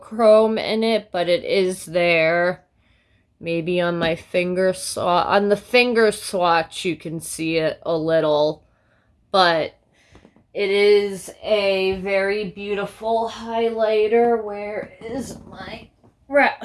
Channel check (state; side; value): identical; both; correlation 1.00